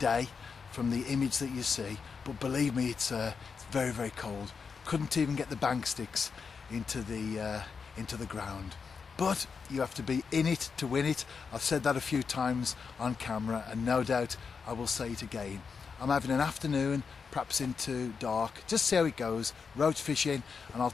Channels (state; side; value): quieter; right; 5.6 dB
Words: from the image that you see. But believe me, it's very, very cold. Couldn't even get the bank sticks into the ground. But you have to be in it to win it. I've said that a few times on camera, and no doubt I will say it again. I'm having an afternoon, perhaps into dark, just see how it goes, roach fishing, and I'll